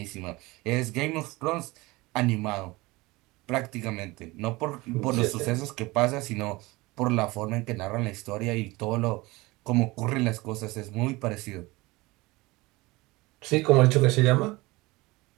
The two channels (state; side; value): quieter; left; 21.8 dB